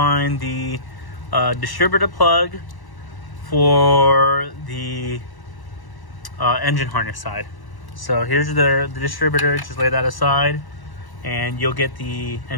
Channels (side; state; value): right; late; 1.1 ms